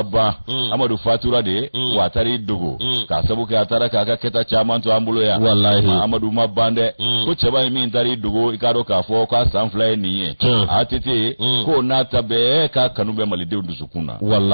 amadou fatura de watari iddugo ka sabu ka atara ka keta chaman to ambulo ya wallahi amadou mabande ko cheba mi intari iddugo ikado ka fo ka sanfla niye atete ko nata be ka kanube malide sukuna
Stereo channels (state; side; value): inverted; both; correlation -1.00